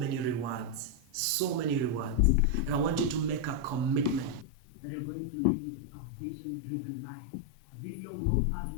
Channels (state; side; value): drops out; right; at 4.5 s